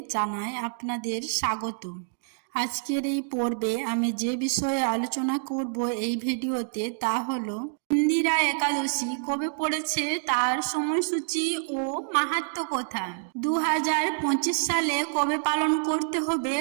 জানাই আপনাদের স্বাগত। আজকের এই পর্বে আমি যে বিষয়ে আলোচনা করব এই ভিডিওতে তা হলো ইন্দিরা একাদশী কবে পড়েছে, তার সময়সূচি ও মাহাত্ম্য কথা। 2025 সালে কবে পালন করতে হবে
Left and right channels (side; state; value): left; silent; digital silence